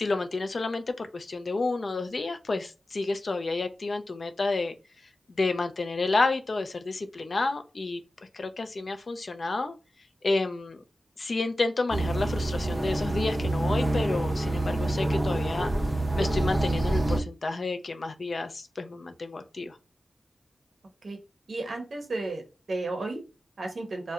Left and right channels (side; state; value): both; normal; correlation 0.94